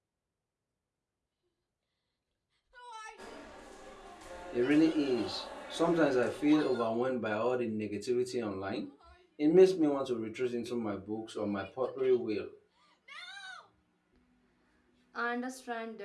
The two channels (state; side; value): identical; both; correlation 1.00